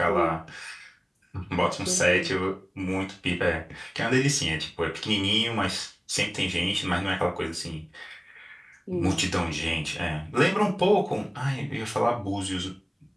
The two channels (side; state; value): both; identical; correlation 1.00